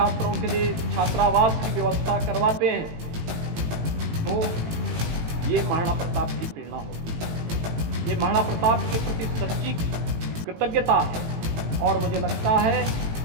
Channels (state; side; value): late; left; 18 ms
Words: के लिए छात्रावास की व्यवस्था करवाते हैं, तो ये महाराणा प्रताप की प्रेरणा होती है। ये महाराणा प्रताप के प्रति सच्ची कृतज्ञता है। और मुझे लगता है